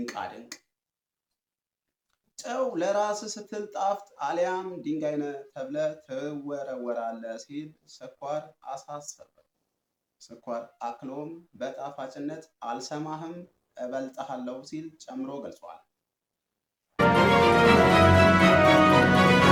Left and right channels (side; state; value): both; identical; correlation 1.00